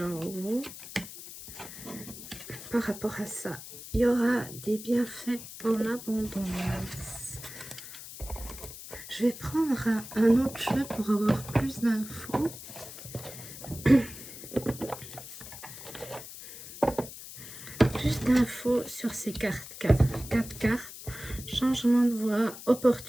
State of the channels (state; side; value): noise; left; hiss, 13 dB below the sound